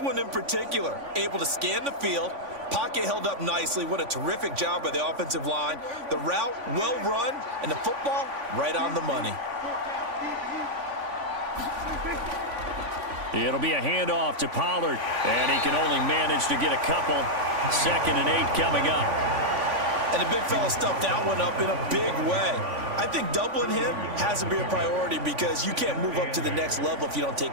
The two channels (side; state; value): left; late; 3.5 ms